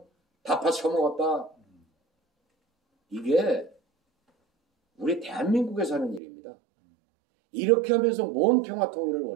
다 파쳐 먹었다. 이게 우리 대한민국에 사는 일입니다. 이렇게 하면서 뭔 평화 통일을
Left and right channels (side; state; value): left; drops out; at 6.2 s